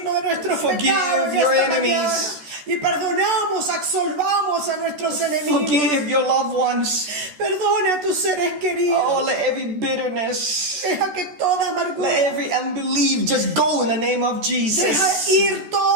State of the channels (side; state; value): left; late; 14 ms